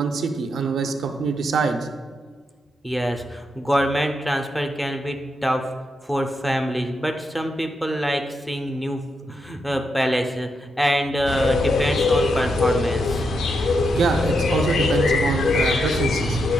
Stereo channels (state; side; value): normal; both; correlation 0.82